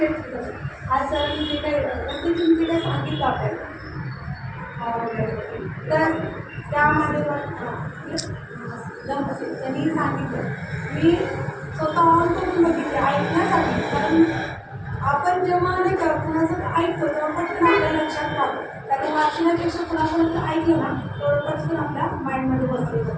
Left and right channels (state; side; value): identical; both; correlation 1.00